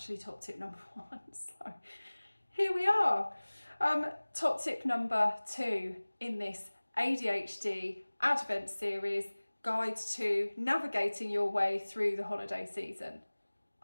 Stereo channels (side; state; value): both; inverted; correlation -1.00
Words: top tip number 1. So here we are. Top tip number 2 in this ADHD Advent Series, Guide to Navigating Your Way Through the Holiday Season.